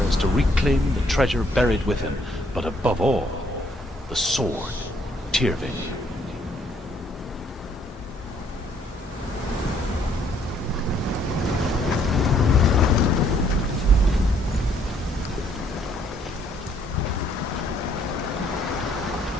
is to reclaim the treasure buried with him, but above all, the sword, Tyrving.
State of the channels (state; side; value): normal; both; correlation 0.66